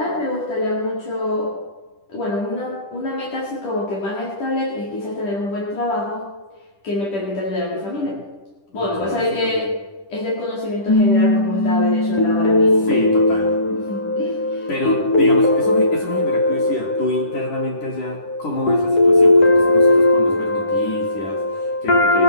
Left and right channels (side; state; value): right; late; 10 ms